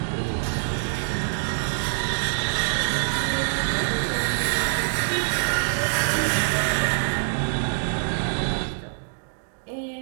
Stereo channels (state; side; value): silent; left; digital silence